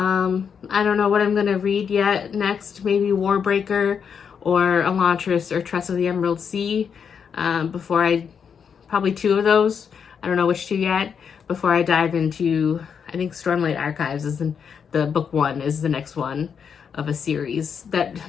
don't know what I'm going to read yet next. Maybe Warbreaker or Elantris or Tress of the Emerald Sea. Probably two of those. I don't know which two yet. Before I dive into, I think Stormlight Archives is the book one is the next one of a series that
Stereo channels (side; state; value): right; quieter; 6.9 dB